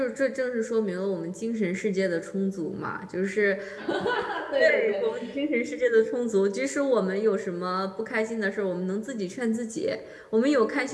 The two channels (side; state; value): both; identical; correlation 1.00